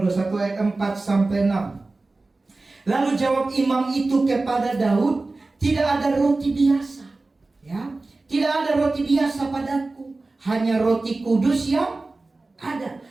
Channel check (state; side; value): quieter; left; 3.3 dB